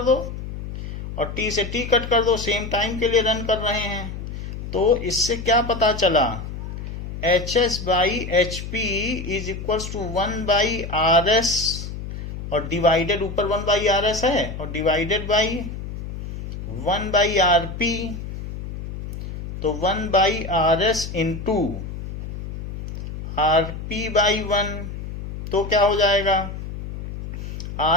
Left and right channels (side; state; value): left; noise; hum, 8 dB below the sound